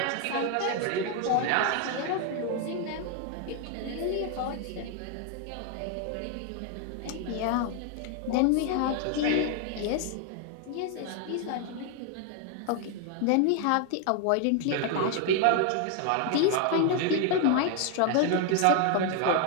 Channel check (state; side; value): different; both; correlation 0.01